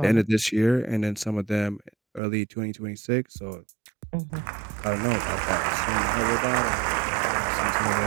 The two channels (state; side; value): drops out; left; at 2.2 s